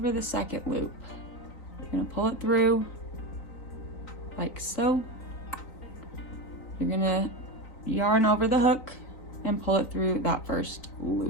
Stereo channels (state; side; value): late; right; 3.9 ms